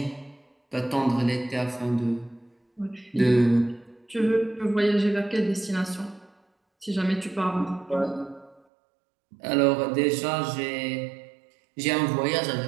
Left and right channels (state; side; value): drops out; left; at 8.6 s